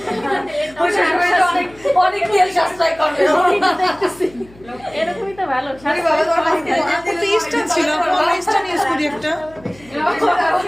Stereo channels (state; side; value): noise; left; hum, 25 dB below the sound